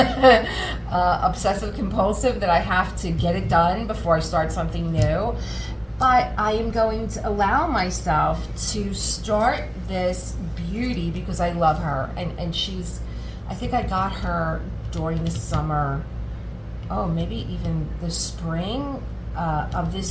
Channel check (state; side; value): identical; both; correlation 1.00